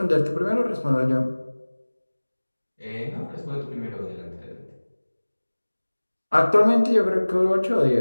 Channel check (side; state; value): both; inverted; correlation -1.00